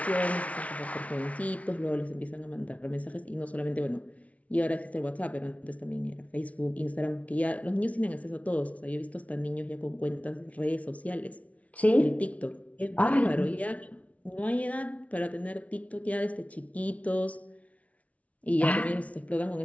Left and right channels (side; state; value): right; late; 0.066 ms